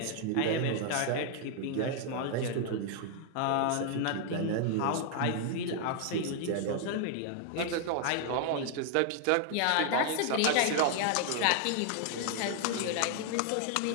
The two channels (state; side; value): different; both; correlation 0.00